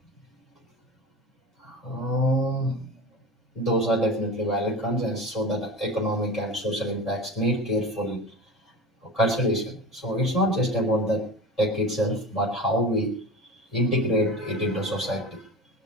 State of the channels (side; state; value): both; normal; correlation 0.30